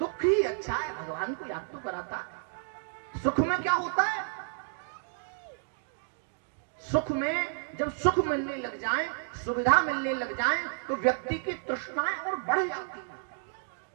ही अच्छा है, भगवान को याद तो कराता है। सुख में क्या होता है? सुख में जब सुख मिलने लग जाए, सुविधा मिलने लग जाए, तो व्यक्ति की तृष्णाएं और बढ़ जाती है।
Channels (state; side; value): silent; left; digital silence